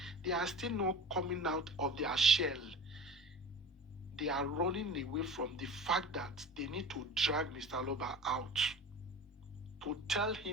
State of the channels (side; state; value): both; normal; correlation 0.36